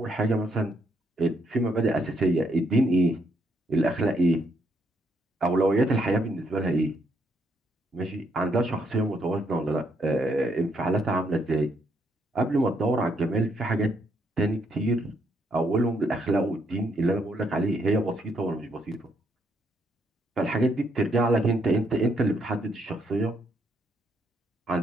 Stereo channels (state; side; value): normal; both; correlation 0.74